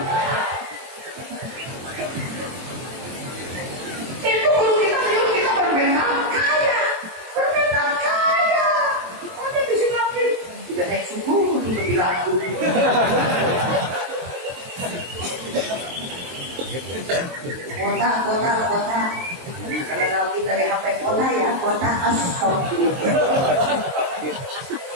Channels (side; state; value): left; late; 23 ms